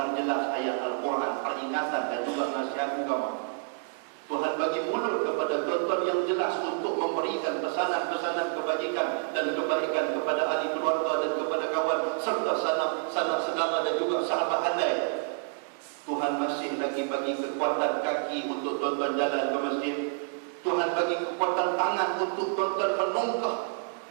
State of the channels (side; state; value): left; silent; digital silence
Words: jelas ayat Al-Quran, peringatan dan juga nasihat agama. Tuhan bagi mulut kepada tuan-tuan yang jelas untuk memberikan pesanan-pesanan kebajikan dan kebaikan kepada ahli keluarga dan kepada kawan serta sanak saudara dan juga sahabat handai. Tuhan masih lagi bagi kekuatan kaki untuk tuan-tuan jalan ke masjid. Tuhan bagi kekuatan tangan untuk tuan-tuan menongkah